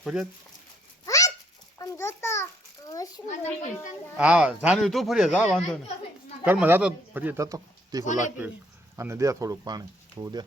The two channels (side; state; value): both; normal; correlation 0.67